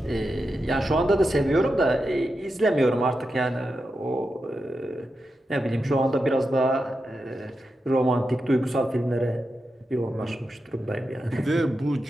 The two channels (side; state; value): both; normal; correlation 0.88